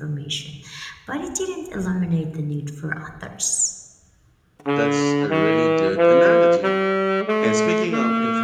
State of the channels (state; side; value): identical; both; correlation 1.00